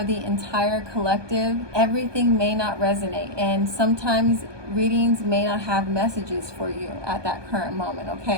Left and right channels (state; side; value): late; left; 1.2 ms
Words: the entire collective, everything may not resonate, and sometimes readings may not have messages for you at that current moment,